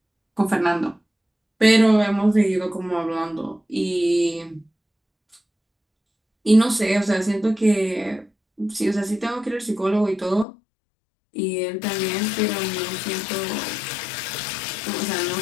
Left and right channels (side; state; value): right; drops out; at 10.5 s